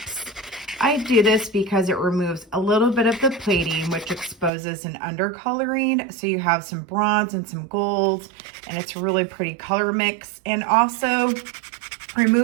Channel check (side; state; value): left; drops out; at 4.5 s